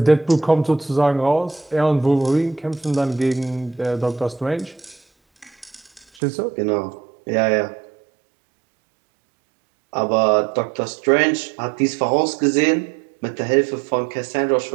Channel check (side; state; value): left; drops out; at 6.1 s